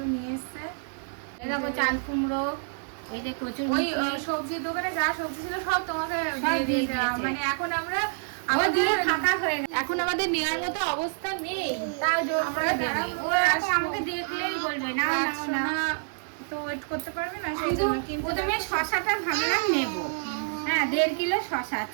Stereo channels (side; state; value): left; silent; digital silence